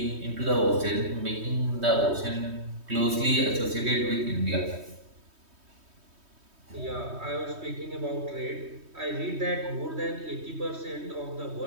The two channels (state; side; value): late; left; 3.2 ms